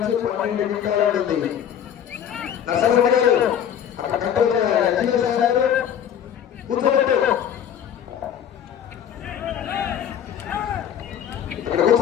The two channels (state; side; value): quieter; right; 9.2 dB